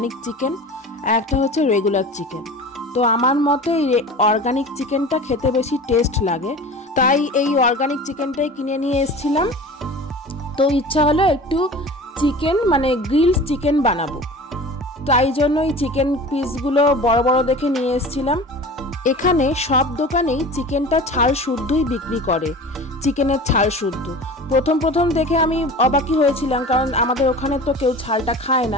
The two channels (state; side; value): normal; both; correlation 0.37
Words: চিকেন আর একটা হচ্ছে রেগুলার চিকেন। তো আমার মতে এই অর্গানিক চিকেনটা খেতে বেশি টেস্ট লাগে, তাই এই অর্গানিক চিকেনটাই কিনে নিয়ে এসেছিলাম। তো ইচ্ছা হলো একটু চিকেন মানে গ্রিল চিকেন বানাবো, তাই জন্য এই চিকেন পিসগুলো বড় বড় দেখে নিয়ে এসেছিলাম। এখানে সব দোকানেই চিকেনটা ছাল শুদ্ধই বিক্রি করে, চিকেনের ছাল শুদ্ধ। প্রথম দেখে আমি অবাকই হয়েছিলাম, কারণ আমাদের ওখানে তো কেউ ছালটা খায়